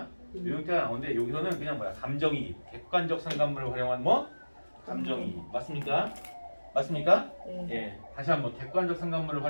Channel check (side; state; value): both; inverted; correlation -1.00